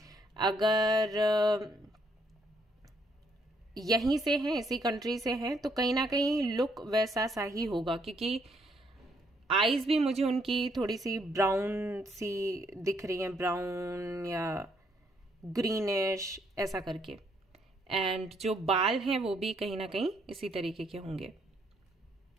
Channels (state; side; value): normal; both; correlation 0.71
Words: अगर यहीं से हैं, इसी कंट्री से हैं, तो कहीं ना कहीं लुक वैसा सा ही होगा, क्योंकि आईज भी मुझे उनकी थोड़ी सी ब्राउन सी दिख रही हैं, ब्राउन या ग्रीनिश ऐसा करके। एंड जो बाल हैं वो भी कहीं ना कहीं इसी तरीके के होंगे।